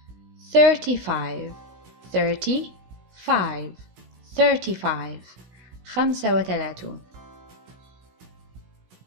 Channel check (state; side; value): late; left; 16 ms